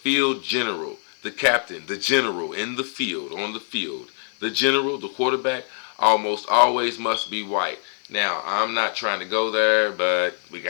general, the captain, the general in the field, on the field, the general, the quarterback, almost always must be white? Now, I'm not trying to go there, but we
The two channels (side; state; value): right; silent; 57 dB below the other